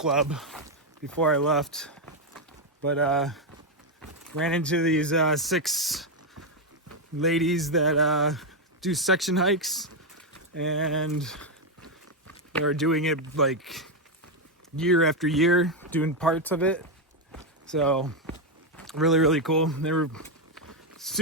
before I left. But ran into these 6 ladies that do section hikes. And they're doing it like year after year, doing parts of it. So really, really cool. They were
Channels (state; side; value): normal; both; correlation 0.04